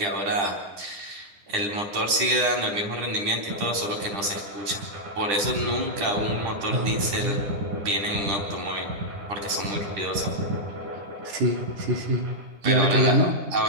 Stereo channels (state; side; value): late; left; 10 ms